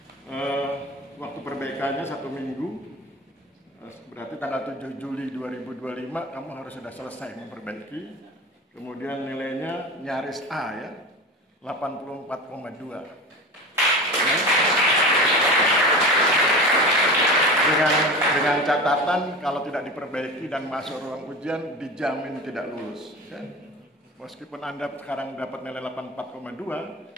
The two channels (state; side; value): normal; both; correlation 0.31